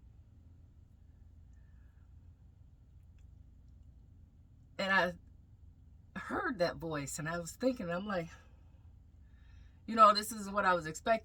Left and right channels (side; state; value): both; identical; correlation 1.00